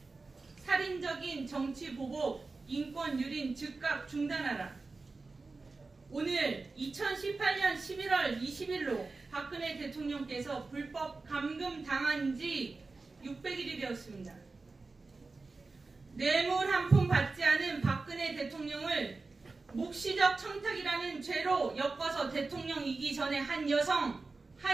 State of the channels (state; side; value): quieter; left; 3.8 dB